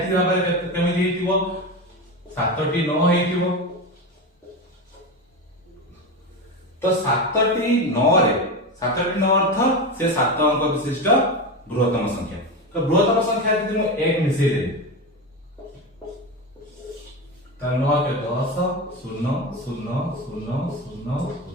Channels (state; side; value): normal; both; correlation 0.20